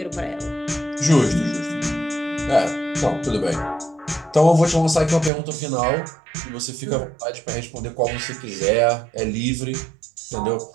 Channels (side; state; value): left; drops out; at 5.3 s